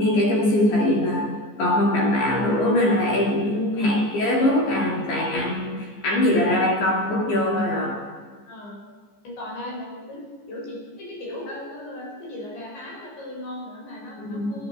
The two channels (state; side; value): late; right; 15 ms